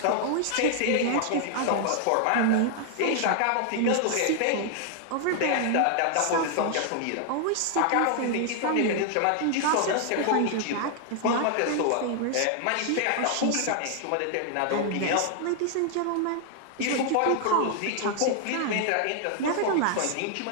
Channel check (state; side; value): different; both; correlation 0.00